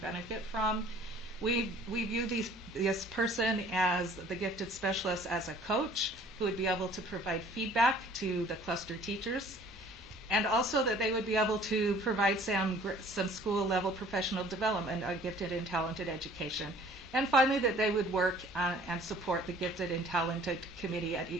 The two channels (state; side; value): normal; both; correlation 0.53